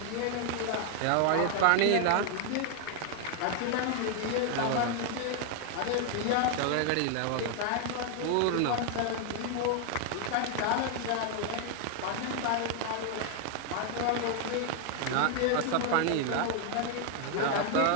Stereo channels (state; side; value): different; both; correlation 0.00